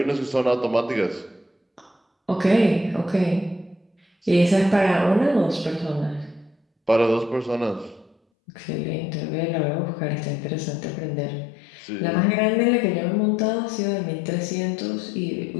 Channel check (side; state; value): right; drops out; at 8.2 s